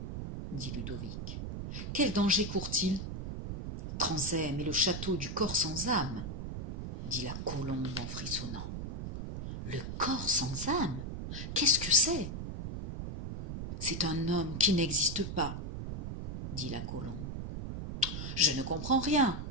dit Ludovic. Quel danger court-il? Tranzème et le château du corps sans âme, dit la colombe en frissonnant. Le corps sans âme? Qu'est-ce que c'est? C'est un homme qui n'existe pas, dit la colombe. Je ne comprends rien,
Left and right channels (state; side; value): noise; right; rumble, 6 dB below the sound